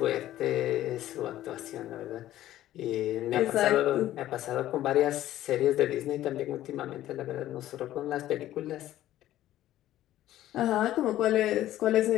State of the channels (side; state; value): right; quieter; 13.7 dB